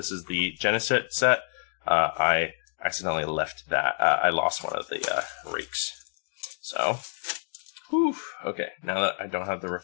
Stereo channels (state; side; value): silent; right; digital silence